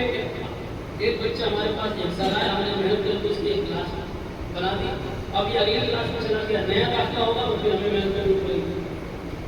کہ ایک بچہ ہمارے پاس ایک سال آیا ہم نے محنت کر کے اس کی ایک کلاس بنا دی. اب یہ اگلی کلاس میں چلا گیا نیا داخلہ ہوگا تو پھر ہمیں محنت کرنی پڑے گی.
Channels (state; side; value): identical; both; correlation 1.00